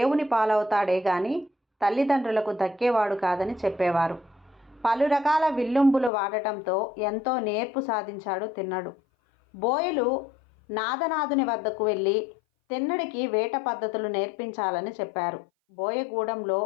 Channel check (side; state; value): right; drops out; at 6.1 s